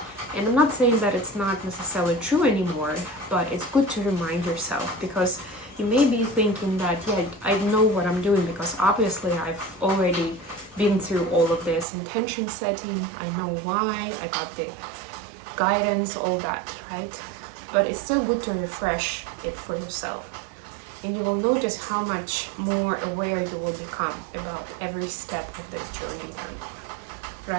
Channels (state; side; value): drops out; left; at 11.9 s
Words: And I'm not saying that it's not necessarily true anymore, but it's good to remind yourself, because you may be thinking that, yeah, I know what I'm doing because obviously I've already been through all of this intention setting. I know why, I got the guidance, all that, right? But it's still good to refresh it for yourself. And you will notice how much more aware you will become about every step of this journey then,